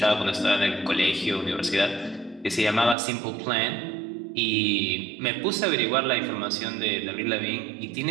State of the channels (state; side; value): drops out; left; at 3.0 s